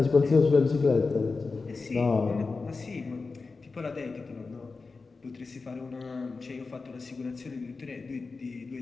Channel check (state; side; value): quieter; right; 4.2 dB